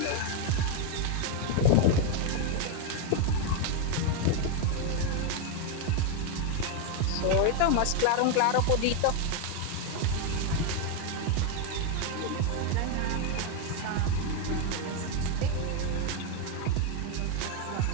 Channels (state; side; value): different; both; correlation 0.01